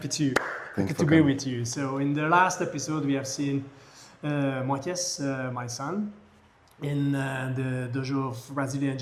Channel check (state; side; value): identical; both; correlation 1.00